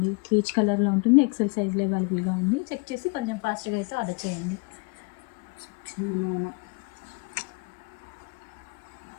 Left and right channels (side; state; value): right; quieter; 31.5 dB